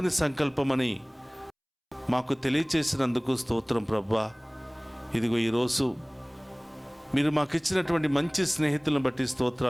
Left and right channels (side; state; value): both; identical; correlation 1.00